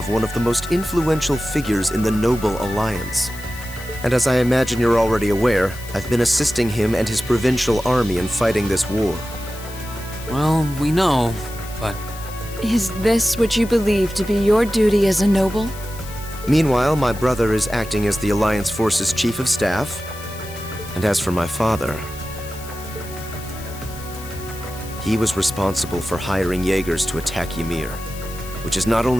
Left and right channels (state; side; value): noise; left; hiss, 16 dB below the sound